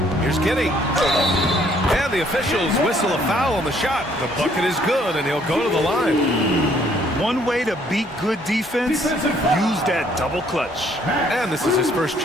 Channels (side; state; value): both; normal; correlation 0.64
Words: Here's Giddey. And the officials whistle a foul on the shot. The bucket is good, and he'll go to the line. One way to beat good defense, use that double clutch. And this is his first